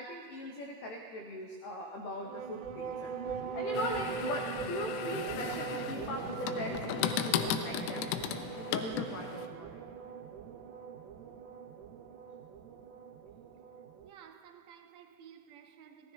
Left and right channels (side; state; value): right; late; 18 ms